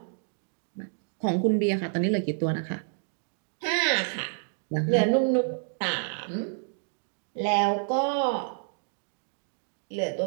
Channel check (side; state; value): left; silent; digital silence